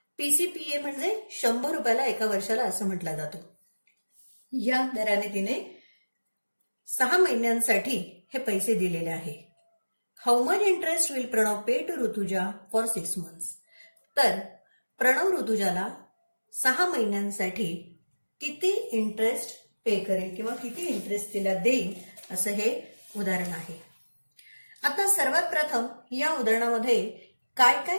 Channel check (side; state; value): both; inverted; correlation -1.00